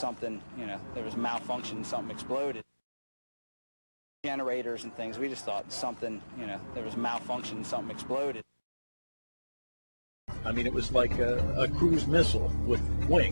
there was malfunction, something exploded. Generators and things. We just thought something, there was malfunction, something exploded. I mean, it was like a cruise missile with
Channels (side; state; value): both; inverted; correlation -1.00